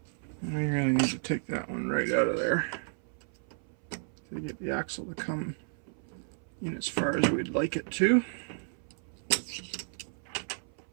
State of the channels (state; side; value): silent; left; 56 dB below the other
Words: And we really need to take that one right out of there to get the axle to come in as far as we'd like it to.